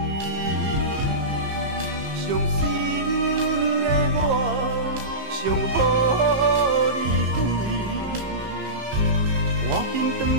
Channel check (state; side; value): late; left; 15 ms